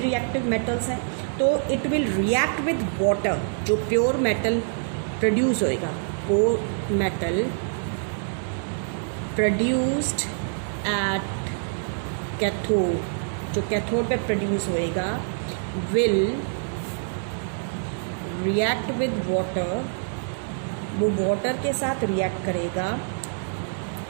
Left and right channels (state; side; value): silent; left; digital silence